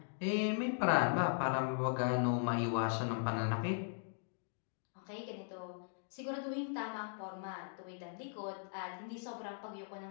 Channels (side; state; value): right; silent; digital silence